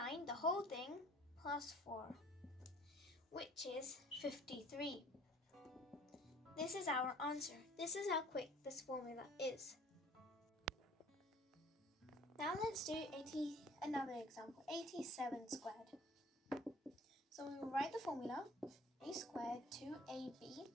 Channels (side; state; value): both; normal; correlation 0.52